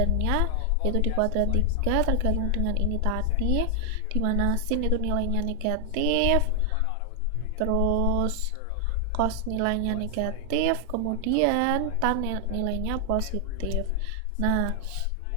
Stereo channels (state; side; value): different; both; correlation 0.00